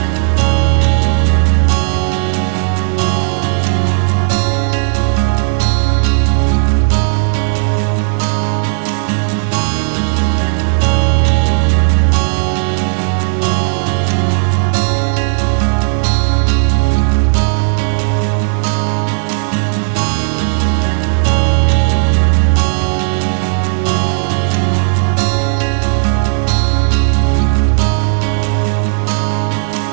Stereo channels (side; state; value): left; silent; digital silence